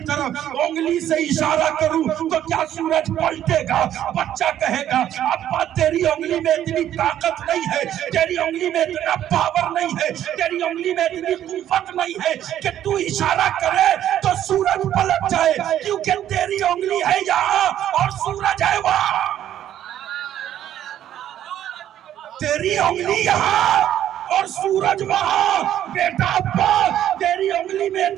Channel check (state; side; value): quieter; left; 11.3 dB